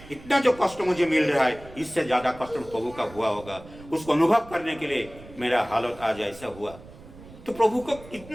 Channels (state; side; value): noise; right; rumble, 19 dB below the sound